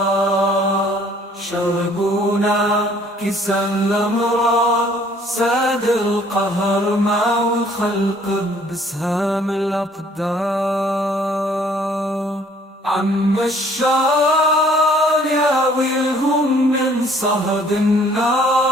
شربونا كيسا الأمراض ساد القهر مع الخلق بسهام الأقدار. عم الشار يا ويلهم من صهد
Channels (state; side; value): normal; both; correlation 0.59